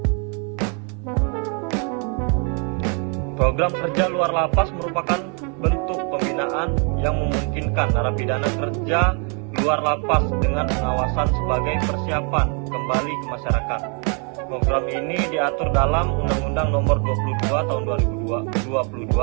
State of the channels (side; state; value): left; quieter; 37.7 dB